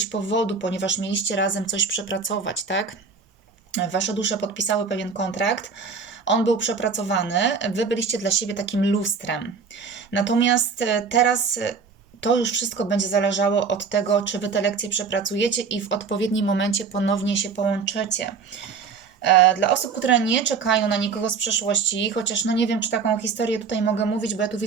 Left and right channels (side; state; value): left; quieter; 5.4 dB